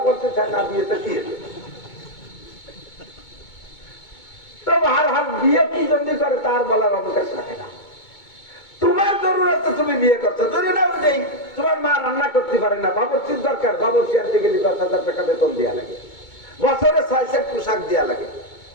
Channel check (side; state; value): right; late; 2.2 ms